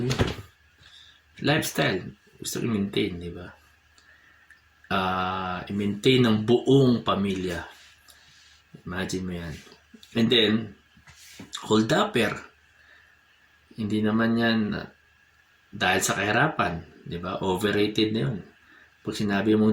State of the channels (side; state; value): both; identical; correlation 1.00